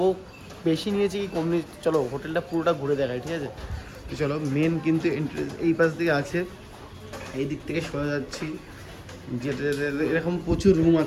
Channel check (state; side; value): identical; both; correlation 1.00